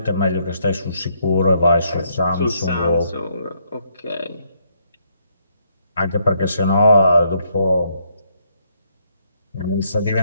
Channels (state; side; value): inverted; both; correlation -0.73